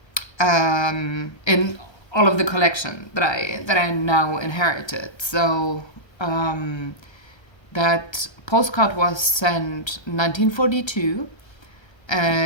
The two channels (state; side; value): late; right; 1.3 ms